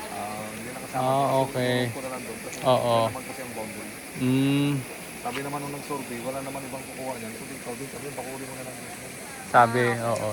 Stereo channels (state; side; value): identical; both; correlation 1.00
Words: Hindi nakasama. Okay. Ko na lang doon kasi Oo. wala naman kasi ang boundary. Mm, Sabi naman nung nag-survey, wala naman ibang kukuha niyan. Ito dito, dito, pakuli mo na lang dito. sabi, oo,